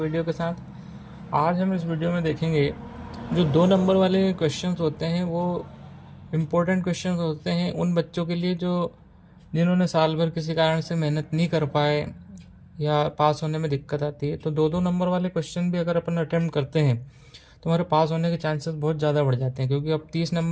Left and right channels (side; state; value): both; identical; correlation 1.00